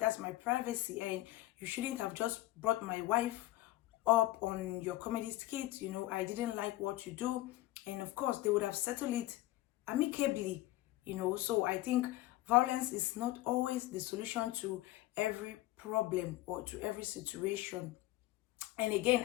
my privacy. And you shouldn't have just brought my wife up on your comedy skit, you know. I didn't like what you do. And of course, they would have settled it amicably, you know. So I think violence is not always the solution to every problem or to every situation. And again,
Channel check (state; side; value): quieter; right; 17.2 dB